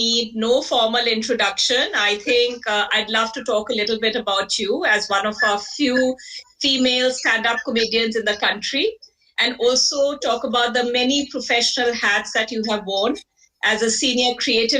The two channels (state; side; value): identical; both; correlation 1.00